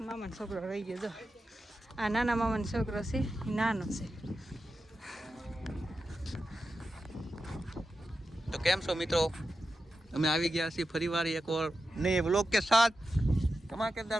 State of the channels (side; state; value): both; normal; correlation 0.91